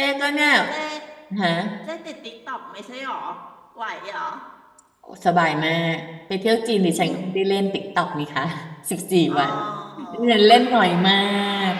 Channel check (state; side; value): identical; both; correlation 1.00